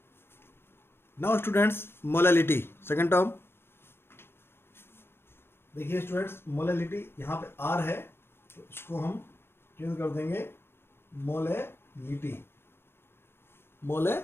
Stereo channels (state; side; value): late; right; 0.11 ms